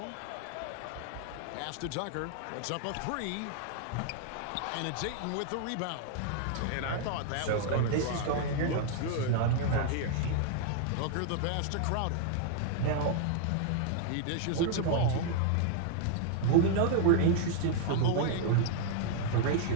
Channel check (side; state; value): both; different; correlation 0.00